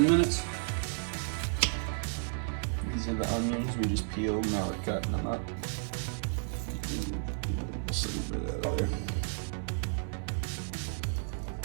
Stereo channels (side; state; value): left; silent; digital silence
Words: minutes. These are the onions we just peeled, now we're cutting them up. Just a little bit out of there.